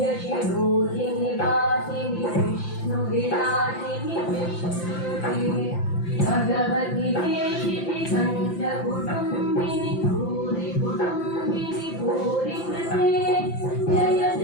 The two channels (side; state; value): right; late; 5.9 ms